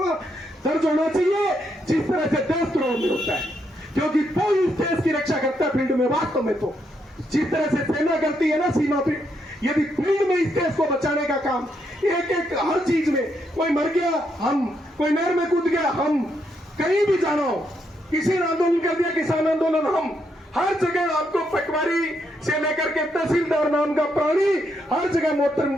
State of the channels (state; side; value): normal; both; correlation 0.78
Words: दर्ज होना चाहिए जिस तरह से देशद्रोह में होता है। क्योंकि वो इस देश की रक्षा करता है फील्ड में। वास्तव में तो जिस तरह से सेना करती है ना सीमा पे, यदि फील्ड में इस देश को बचाने का काम एक एक हर चीज में, कोई मर गया हम, कोई नहर में कूद गया हम, कहीं भी जाना हो, किसी ने आंदोलन कर दिया किसान आंदोलन, हम हर जगह आपको पटवारी से लेकर के तहसीलदार नाम का प्राणी हर जगह